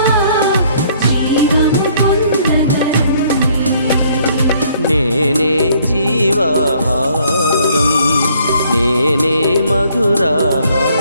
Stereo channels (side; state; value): both; inverted; correlation -0.63